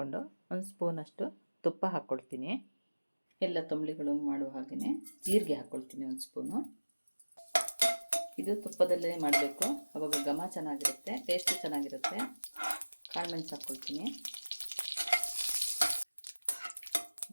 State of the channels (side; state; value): both; inverted; correlation -1.00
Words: ಒಂದು ಸ್ಪೂನಷ್ಟು ತುಪ್ಪ ಹಾಕ್ಕೊಳ್ತೀನಿ. ಎಲ್ಲ ತಂಬಳಿಗಳು ಮಾಡುವ ಹಾಗೆಯೇ ಜೀರಿಗೆ ಹಾಕ್ಕೊಳ್ತೀನಿ ಒಂದು ಸ್ಪೂನು. ಇದು ತುಪ್ಪದಲ್ಲೇ ಮಾಡಬೇಕು, ಅವಾಗ ಘಮ ಚೆನ್ನಾಗಿರುತ್ತೆ, ಟೇಸ್ಟು ಚೆನ್ನಾಗಿರುತ್ತೆ. ಕಾಳುಮೆಣಸು ಹಾಕ್ಕೊಳ್ತೀನಿ.